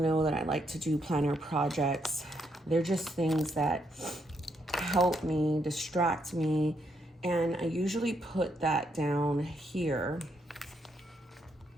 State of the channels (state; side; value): normal; both; correlation 0.77